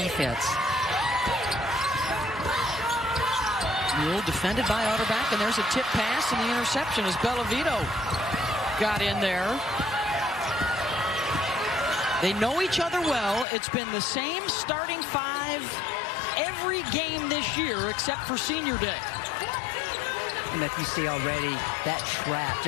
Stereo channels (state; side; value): drops out; right; at 13.5 s